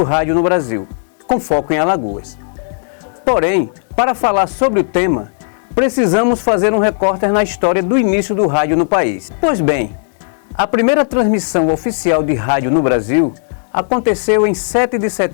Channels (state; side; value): silent; right; digital silence